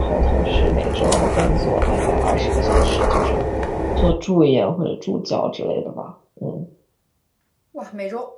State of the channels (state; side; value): identical; both; correlation 1.00